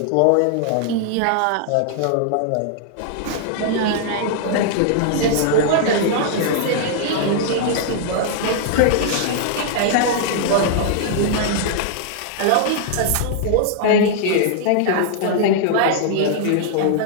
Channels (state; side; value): different; both; correlation -0.01